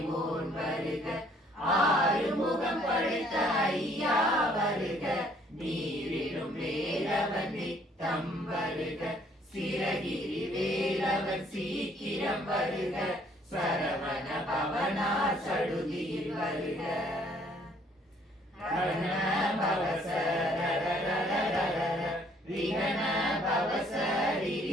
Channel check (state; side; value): normal; both; correlation 0.62